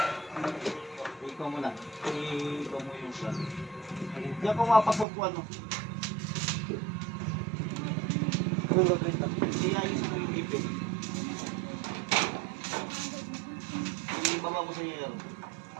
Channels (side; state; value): left; drops out; at 5.1 s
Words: Ikaw muna. Ikaw mo yung plan. Diyan ko mapasok ko ano. Iayos mo yung ipit. Ibaba mo sa yero.